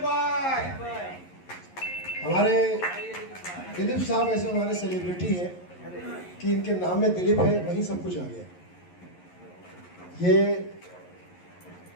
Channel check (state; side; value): late; right; 11 ms